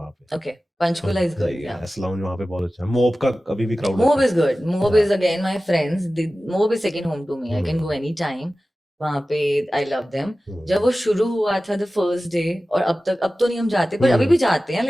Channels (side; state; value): both; normal; correlation 0.96